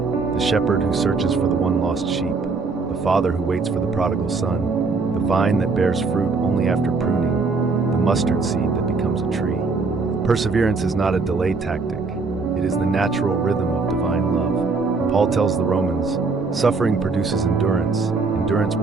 The shepherd who searches for the one lost sheep, the father who waits for the prodigal son, the vine that bears fruit only after pruning, the mustard seed that becomes a tree. Perseverance is not a delay tactic. It is the natural rhythm of divine love. Paul tells the Romans, suffering produces endurance, endurance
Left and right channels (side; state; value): left; quieter; 4.2 dB